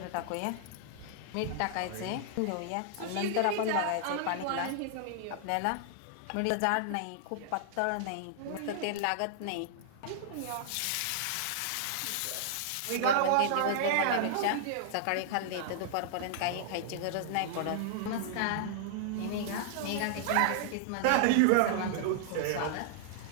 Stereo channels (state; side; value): different; both; correlation -0.01